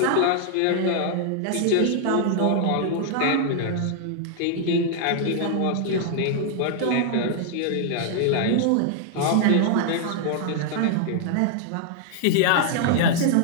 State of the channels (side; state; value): both; different; correlation 0.00